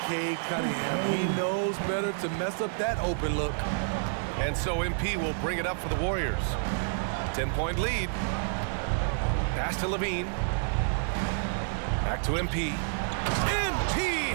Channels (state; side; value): silent; left; 58 dB below the other